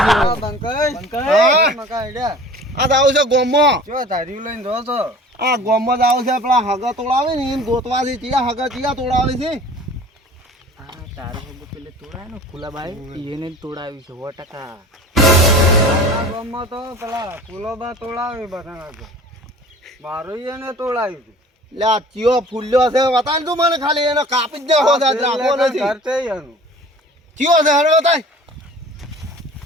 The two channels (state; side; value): normal; both; correlation 0.44